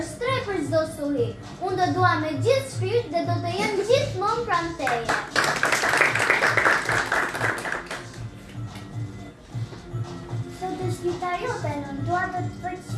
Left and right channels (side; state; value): both; identical; correlation 1.00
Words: stre për çdo suhi. Unë do dua me gjithë shpirt dhe do të jem gjithmonë pranë teje. Sot është dita jote, nën, dua të të